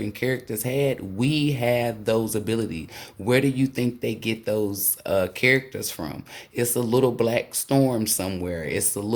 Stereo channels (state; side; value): identical; both; correlation 1.00